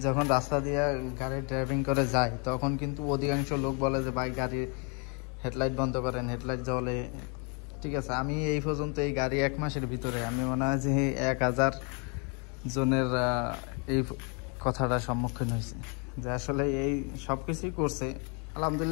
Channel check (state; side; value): quieter; right; 35.4 dB